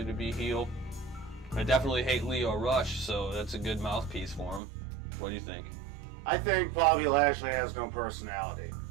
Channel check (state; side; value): drops out; left; at 4.6 s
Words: to be heel. I definitely hate Leo Rush, so that's a good mouthpiece for him. What do you think? I think Bobby Lashley has no personality,